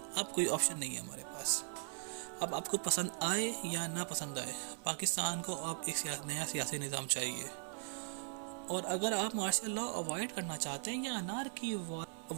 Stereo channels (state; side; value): silent; left; 52 dB below the other